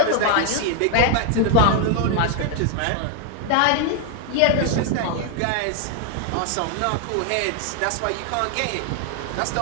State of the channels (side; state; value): both; different; correlation 0.00